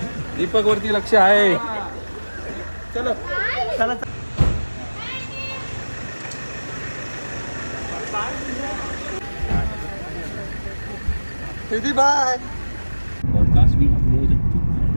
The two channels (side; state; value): both; inverted; correlation -1.00